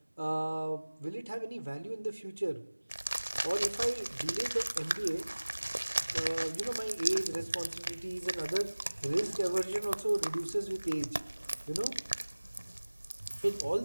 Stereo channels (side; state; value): both; inverted; correlation -1.00